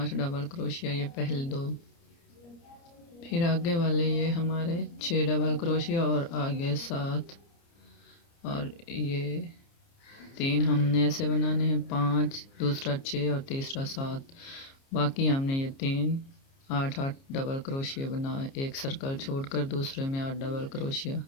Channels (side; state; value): right; late; 29 ms